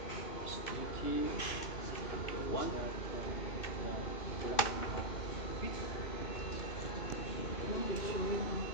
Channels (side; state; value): right; late; 2.6 ms